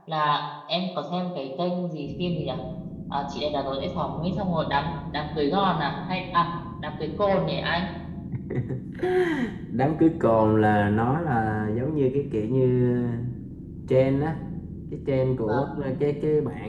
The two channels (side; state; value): both; identical; correlation 1.00